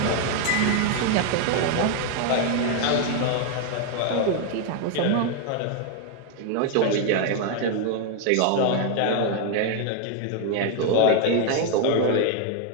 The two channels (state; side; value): different; both; correlation 0.00